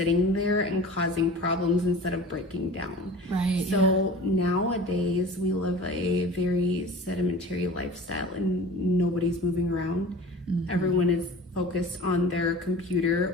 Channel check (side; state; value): both; normal; correlation 0.39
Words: there and causing problems instead of breaking down. Right. So nowadays we live a very sedentary lifestyle and nobody's moving around. Everyone is focused on their